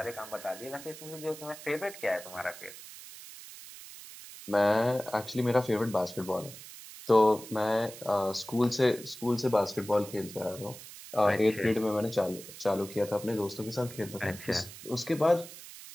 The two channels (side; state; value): right; noise; hiss, 15 dB below the sound